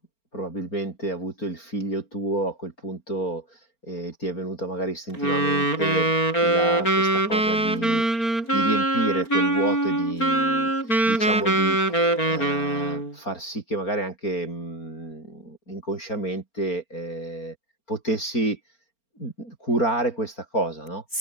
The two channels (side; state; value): right; late; 4.4 ms